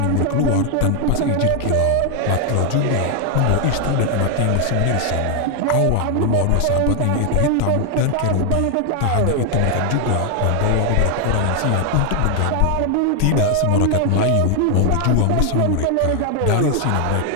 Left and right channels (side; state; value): both; different; correlation 0.00